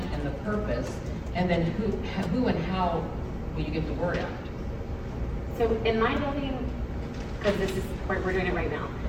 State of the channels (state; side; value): identical; both; correlation 1.00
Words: and the purpose, and then who and how will you get the word out? So in my building, because this is, we're doing it right now.